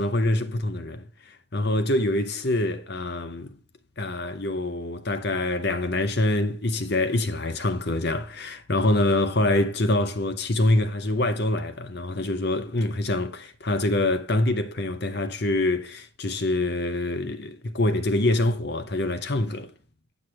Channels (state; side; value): normal; both; correlation 0.50